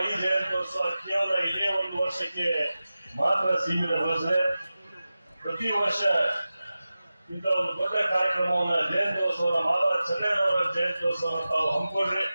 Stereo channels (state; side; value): inverted; both; correlation -0.95